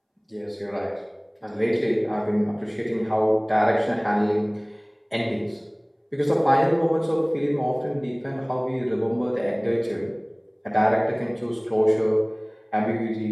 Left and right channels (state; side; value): identical; both; correlation 1.00